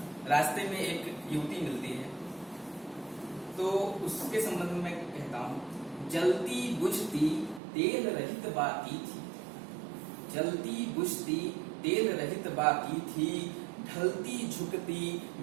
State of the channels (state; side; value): drops out; left; at 7.6 s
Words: रास्ते में एक युवती मिलती है, तो उसके संबंध में मैं कहता हूँ, जलती बुझती तेल रहित बाती थी, जलती बुझती तेल रहित बाती थी, ढलती झुकती